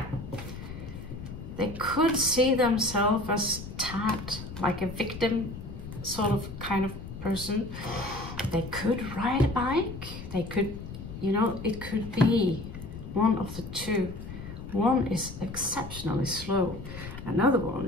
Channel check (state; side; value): noise; left; rumble, 11 dB below the sound